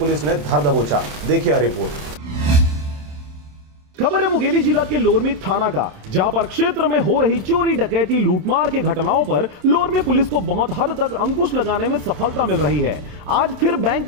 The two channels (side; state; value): left; late; 27 ms